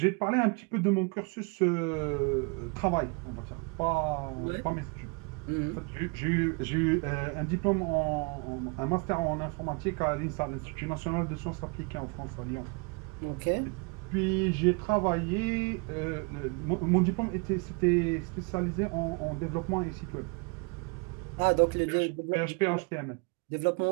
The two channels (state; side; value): quieter; left; 32.2 dB